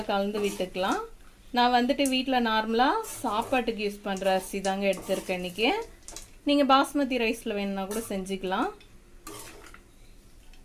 கலந்து விட்டுக்கலாம். நான் வந்துட்டு வீட்டில் நார்மலாக சாப்பாட்டுக்கு யூஸ் பண்ணுற அரிசி தாங்க எடுத்திருக்கேன் இன்றைக்கி. நீங்கள் பாஸ்மதி ரைஸில் வேணுன்னா கூட செஞ்சுக்கலாம்.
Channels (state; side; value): identical; both; correlation 1.00